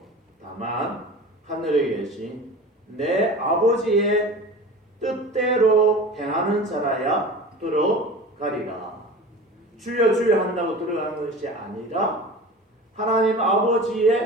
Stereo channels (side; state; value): both; normal; correlation 0.36